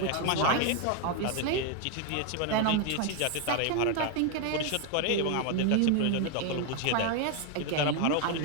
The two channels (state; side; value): different; both; correlation 0.01